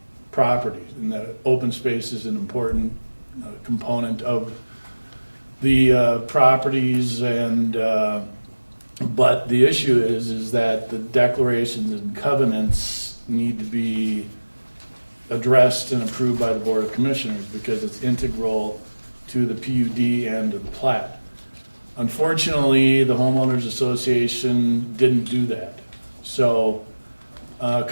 properties. And the open space is an important component of the properties, and but the issue is that the declarations and covenants need to be addressed and approved by the Board of Commissioners because it's integral to the PUD and to the plat. Unfortunately, the homeowners association didn't do that. So a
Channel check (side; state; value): both; inverted; correlation -1.00